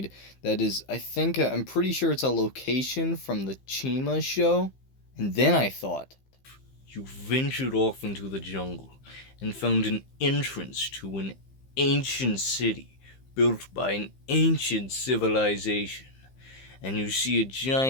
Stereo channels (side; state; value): right; late; 15 ms